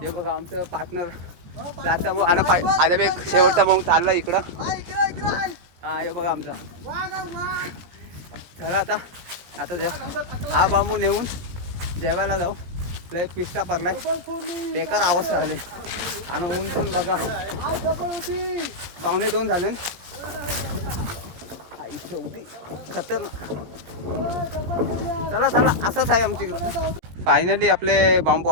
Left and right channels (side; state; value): left; late; 17 ms